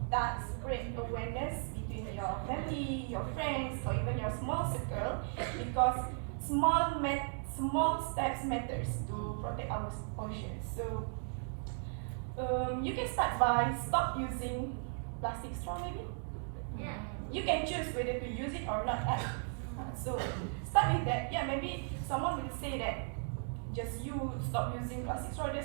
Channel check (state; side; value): silent; left; 54 dB below the other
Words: start spread awareness between your family, your friends, or even your small circle, because small steps matters to protect our oceans. So you can start by stop using plastic straw maybe. Yeah. You can choose whether to use it or not. So start with that. Yeah, maybe someone will say that just you stop using plastic straw,